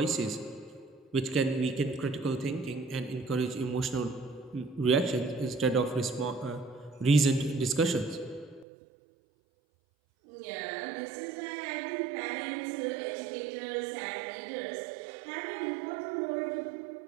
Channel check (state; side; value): drops out; left; at 8.7 s